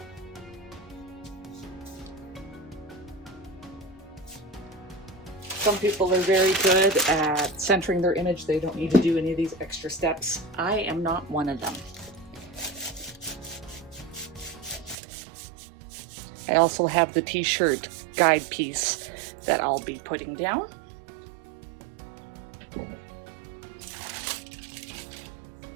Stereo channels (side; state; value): left; drops out; at 15.0 s